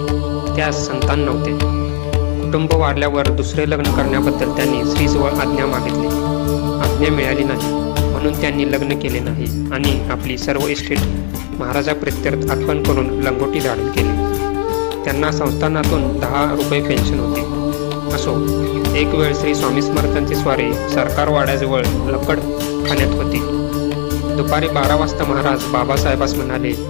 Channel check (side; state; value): right; silent; digital silence